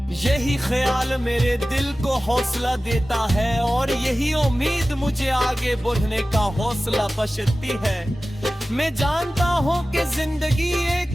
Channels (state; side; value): normal; both; correlation 0.96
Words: यही ख्याल मेरे दिल को हौसला देता है और यही उम्मीद मुझे आगे बढ़ने का हौसला बख्शती है। मैं जानता हूँ कि जिंदगी एक